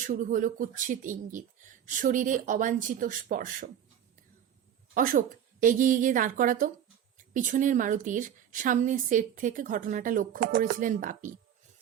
শুরু হলো কুৎসিত ইঙ্গিত, শরীরে অবাঞ্ছিত স্পর্শ। অশোক, এগিয়ে গিয়ে দাঁড় করাতো। পিছনের মারুতির সামনের সেট থেকে ঘটনাটা লক্ষ্য করেছিলেন বাপি।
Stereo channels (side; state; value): left; quieter; 9.6 dB